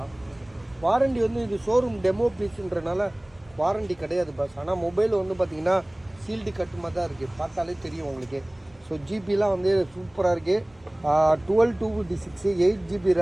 வாரண்டி வந்து இது ஷோரூம் டெமோ பீஸுன்றனால வாரண்டி கிடையாது பஸ். ஆனால் மொபைல் வந்து பார்த்திங்கன்னா சீல்டு கட்டுமா தான் இருக்குது, பார்த்தாலே தெரியும் உங்களுக்கு. ஸோ ஜிபிலாம் வந்து சூப்பராக இருக்குது. 12256, 8GB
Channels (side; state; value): right; noise; hum, 30 dB below the sound